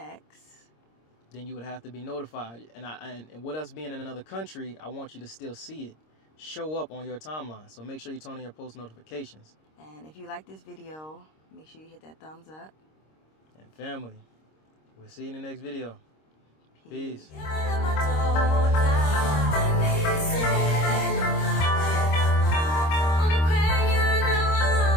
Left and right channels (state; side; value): late; right; 26 ms